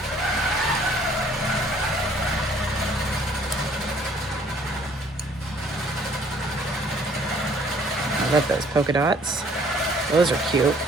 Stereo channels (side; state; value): both; normal; correlation 0.59